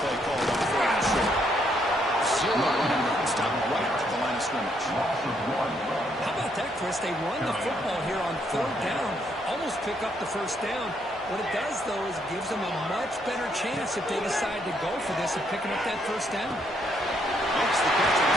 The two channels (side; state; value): both; normal; correlation 0.73